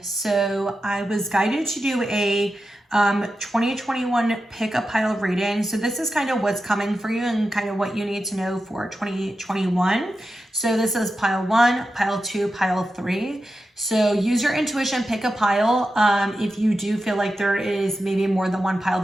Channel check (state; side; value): normal; both; correlation 0.90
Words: So I was guided to do a 2021 pick a pile reading. So this is kind of what's coming for you and kind of what you need to know for 2021. So this is pile 1, pile 2, pile 3. So use your intuition, pick a pile. If you do feel like there is maybe more than one pile